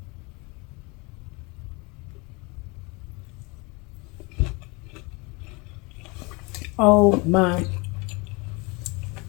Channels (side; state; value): right; quieter; 27.8 dB